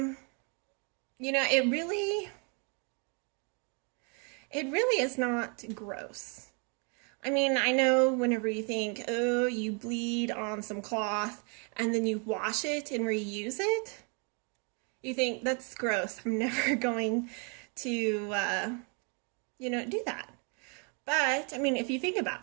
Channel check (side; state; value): left; quieter; 36.4 dB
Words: It really is not gross. I mean, I know whenever you think, oh, you bleed on some cloth and then you wash it and reuse it, you think that's gross. I'm never going to, do that. But, I mean, if you think